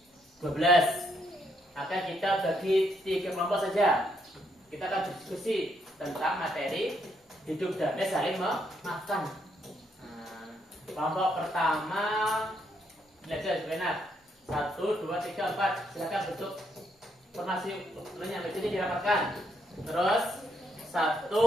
12. Akan kita bagi 3 kelompok saja. Kita akan diskusi tentang materi hidup damai saling memaafkan. Kelompok pertama belajar benar. 1, 2, 3, 4. Silakan bentuk formasi yang ini dirapatkan. Terus 1,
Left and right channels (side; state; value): both; normal; correlation 0.75